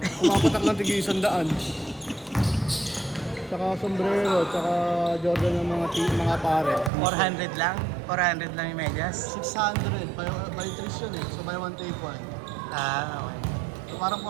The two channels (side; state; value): left; drops out; at 6.9 s